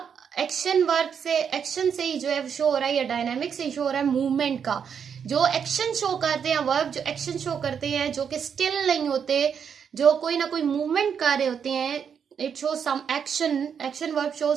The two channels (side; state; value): left; quieter; 7.3 dB